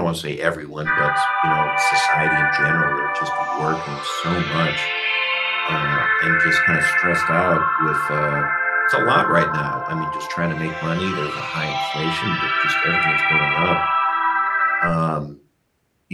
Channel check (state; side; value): identical; both; correlation 1.00